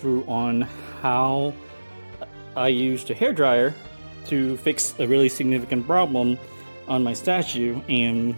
on how I used a hairdryer to fix a really significant problem on my statue, and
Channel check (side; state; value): both; inverted; correlation -1.00